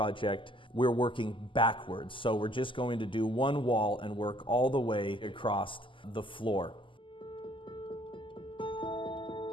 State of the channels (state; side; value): late; right; 0.25 ms